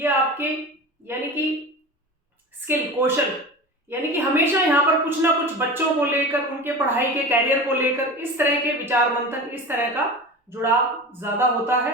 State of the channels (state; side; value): normal; both; correlation 0.31